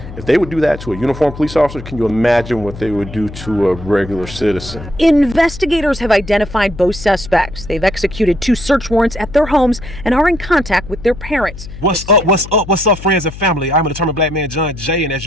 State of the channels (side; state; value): left; noise; hum, 13 dB below the sound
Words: if they would do that to a uniformed police officer, can you imagine what they would do to a regular citizen? Investigators have identified both suspects. They've executed 2 search warrants at their homes and are in contact with their parents. What's up, friends and family? I'm a determined black man, John Jay, and as